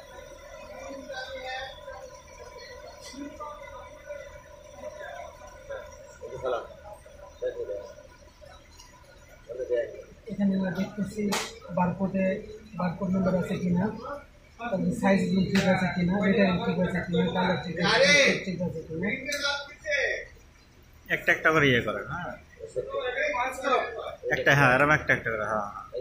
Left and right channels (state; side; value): identical; both; correlation 1.00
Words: এখানে আমরা দেখতেছি বারকোড নাম্বার আছে কিনা, তারপরে সাইজ ঠিক আছে কিনা, রিটার্ন ঠিক আছে কিনা, কালার ঠিক আছে কিনা। একটা একটা করে ইয়ে করেন। হ্যাঁ একটা, হ্যাঁ এরকম একটা একটা করে। হ্যাঁ